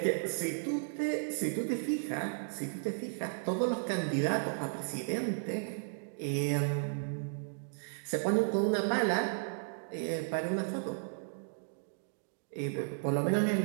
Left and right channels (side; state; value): left; silent; digital silence